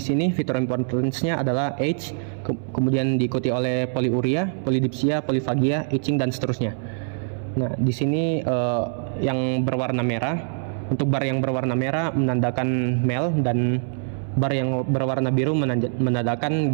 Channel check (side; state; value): left; silent; 63 dB below the other